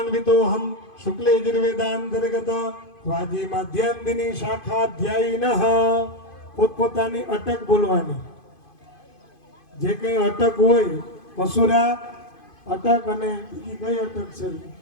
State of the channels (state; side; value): late; right; 2.5 ms